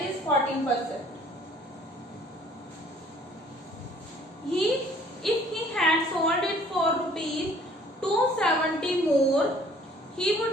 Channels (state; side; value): normal; both; correlation 0.56